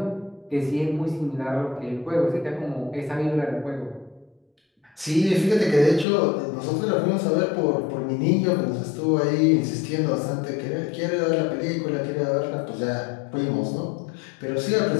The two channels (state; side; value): drops out; right; at 6.1 s